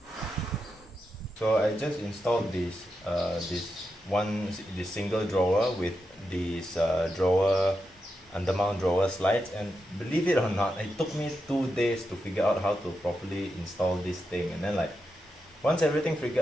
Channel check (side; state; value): both; normal; correlation 0.87